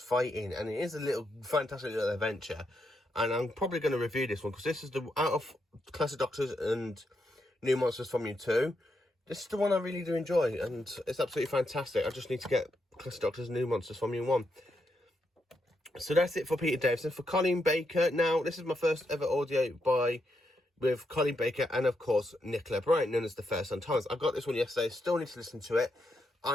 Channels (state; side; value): normal; both; correlation 0.81